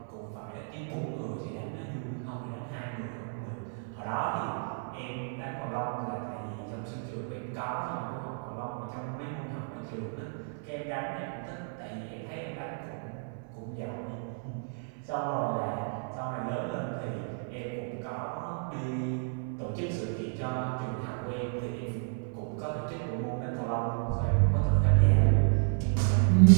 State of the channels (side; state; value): left; silent; 56 dB below the other